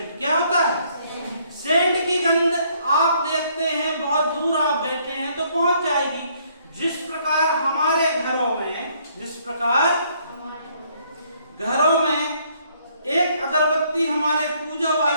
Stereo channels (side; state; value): both; inverted; correlation -0.66